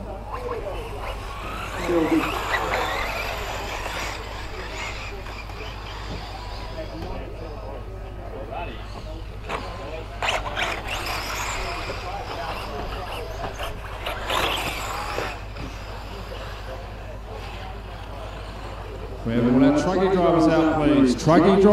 we have all our truggy drivers out, please? Truggy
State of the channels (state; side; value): identical; both; correlation 1.00